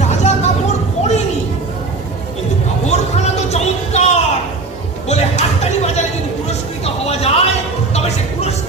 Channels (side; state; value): left; quieter; 3.7 dB